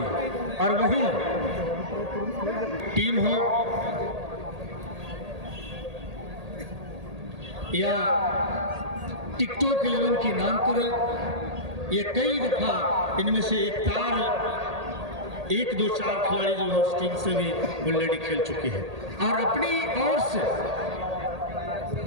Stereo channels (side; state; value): left; late; 1.8 ms